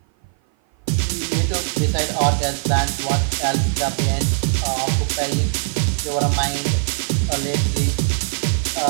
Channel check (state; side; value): silent; left; 56 dB below the other